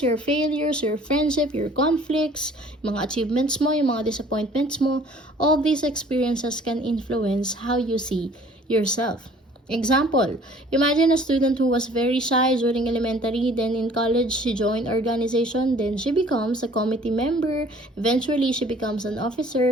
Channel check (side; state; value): both; normal; correlation 0.53